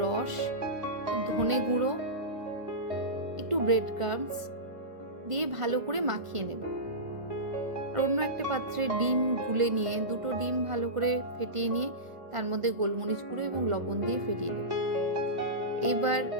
রস, ধনে গুঁড়ো, একটু ব্রেড ক্রাম্বস দিয়ে ভালো করে মাখিয়ে নেব। আর অন্য একটা পাত্রে ডিম গুলে নিয়ে দুটো ডিম ভালো করে ফেটিয়ে নিয়ে তার মধ্যে গোলমরিচ গুঁড়ো এবং লবণ দিয়ে ফেটিয়ে নেব। এবার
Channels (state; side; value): late; left; 1.5 ms